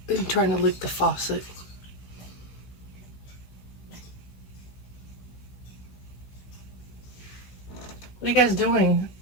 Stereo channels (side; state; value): right; late; 16 ms